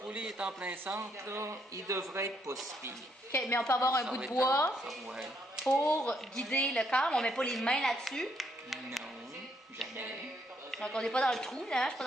est en plein centre, là, il devrait être pas si pire. OK, mais on peut avoir un Ça bout va de être bois ça, ouais. pour guider le câble. On met pas les mains là-dessus. Non, jamais. Donc, on n'est pas dans le trou, là, je suis pas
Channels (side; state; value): both; normal; correlation 0.73